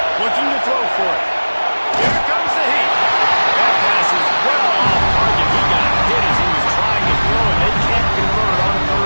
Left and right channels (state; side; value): inverted; both; correlation -1.00